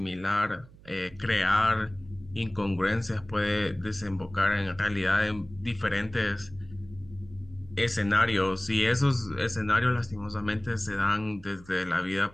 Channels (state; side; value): noise; right; hum, 22 dB below the sound